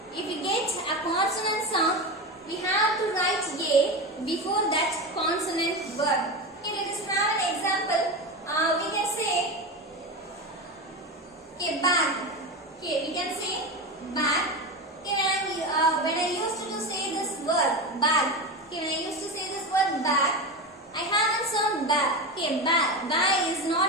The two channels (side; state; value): both; normal; correlation 0.21